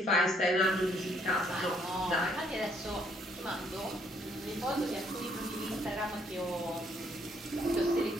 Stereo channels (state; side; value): normal; both; correlation 0.68